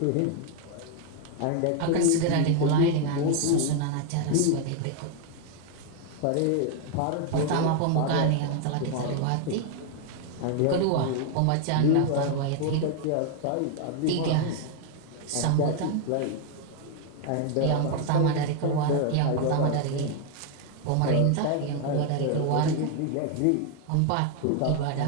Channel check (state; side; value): different; both; correlation 0.01